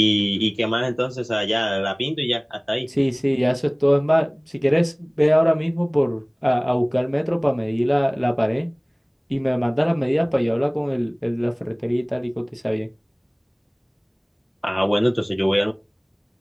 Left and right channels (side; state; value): both; identical; correlation 1.00